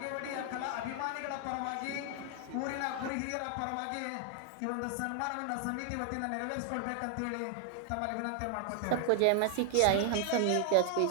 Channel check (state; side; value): different; both; correlation 0.00